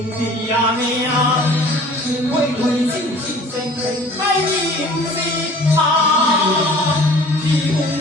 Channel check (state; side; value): normal; both; correlation 0.48